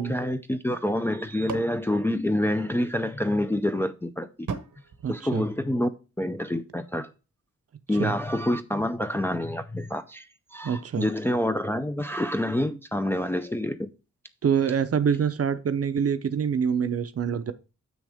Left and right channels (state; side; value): normal; both; correlation 0.72